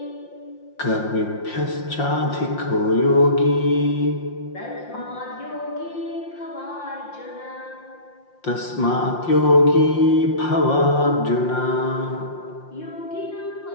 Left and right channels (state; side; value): late; right; 5.7 ms